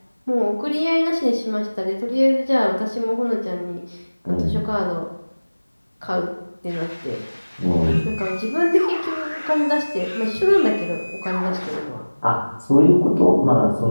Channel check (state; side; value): inverted; both; correlation -1.00